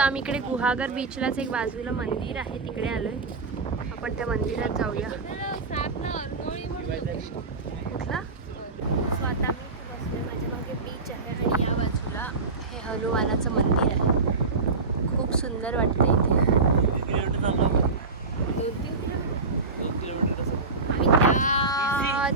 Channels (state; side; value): quieter; left; 3.9 dB